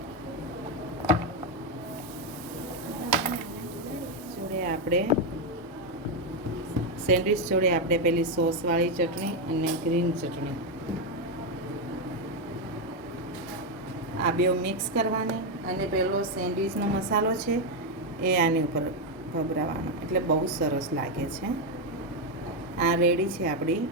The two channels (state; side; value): normal; both; correlation 0.04